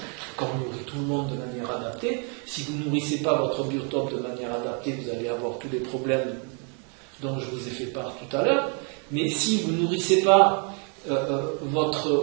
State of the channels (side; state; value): left; quieter; 39.1 dB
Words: Qu'on nourrit tout le monde de manière adaptée. Si vous ne nourrissez pas votre biotope de manière adaptée, vous allez avoir tous les problèmes dont je vous ai fait part tout à l'heure. Mais si vous ne nourrissez pas